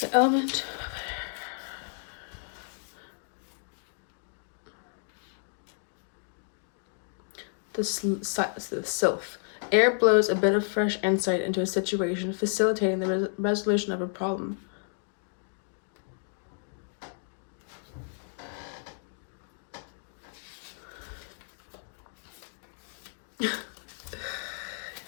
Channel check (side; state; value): right; silent; digital silence